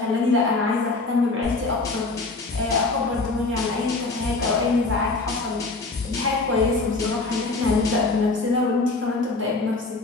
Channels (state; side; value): quieter; right; 3.5 dB